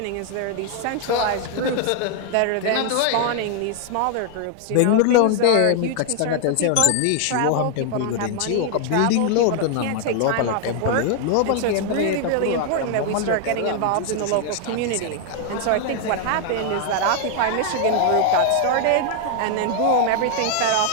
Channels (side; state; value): both; different; correlation 0.00